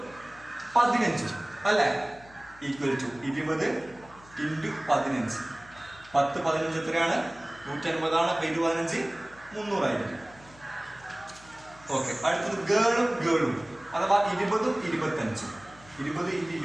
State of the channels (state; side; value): noise; left; hum, 24 dB below the sound